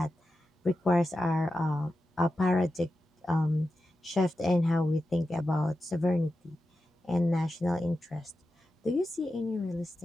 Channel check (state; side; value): normal; both; correlation 0.91